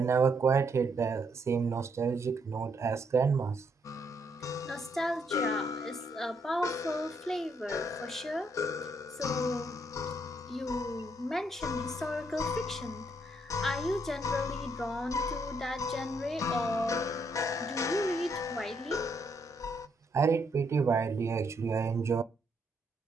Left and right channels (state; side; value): normal; both; correlation 0.74